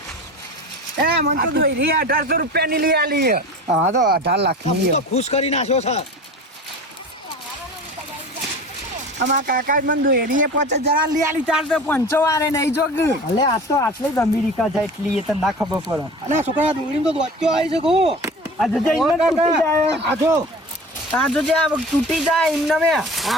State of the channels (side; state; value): both; normal; correlation 0.36